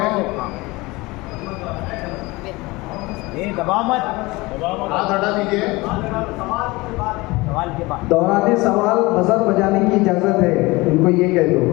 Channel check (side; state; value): right; quieter; 22.4 dB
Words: दबाव मत, हाथ हटा दीजिए। सवाल के बाद दौराने सवाल बजर बजाने की इजाजत है, उनको ये कह दो,